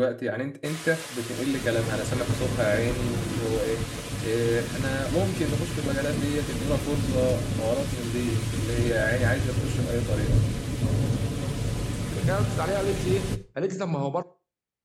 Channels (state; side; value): identical; both; correlation 1.00